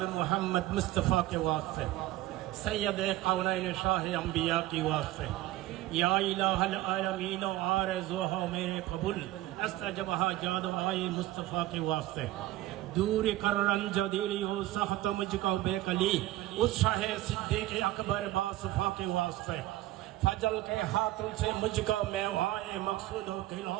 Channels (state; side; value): quieter; left; 16.1 dB